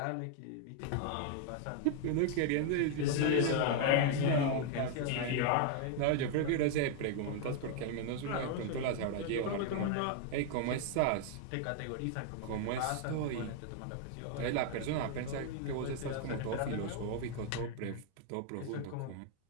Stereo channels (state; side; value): different; both; correlation 0.00